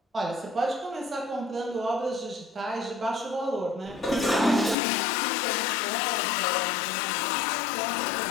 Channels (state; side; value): drops out; right; at 4.8 s